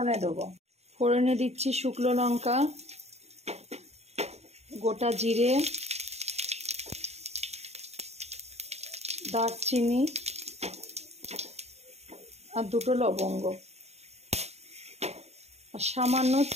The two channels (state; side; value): late; left; 0.31 ms